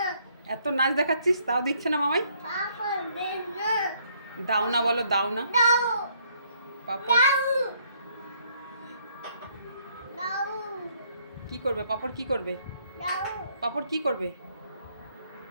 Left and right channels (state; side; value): inverted; both; correlation -0.67